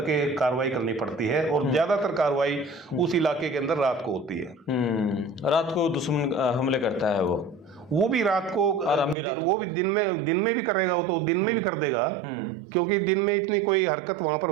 कार्रवाई करनी पड़ती है। और ज्यादातर कार्रवाई उस इलाके के अंदर रात को होती है। रात को दुश्मन हमले करता है वो भी रात को, और हम भी रात वो भी दिन में भी करेगा, वो तो दिन में भी कर देगा, क्योंकि दिन में इतनी कोई हरकत वहां पर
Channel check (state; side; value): drops out; left; at 9.2 s